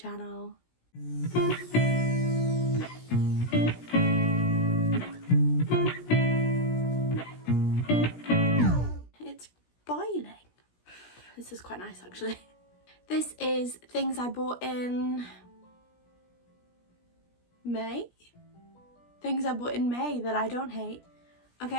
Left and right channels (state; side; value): late; right; 17 ms